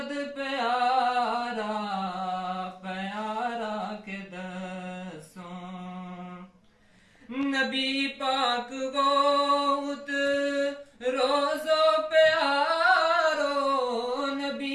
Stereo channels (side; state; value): both; identical; correlation 1.00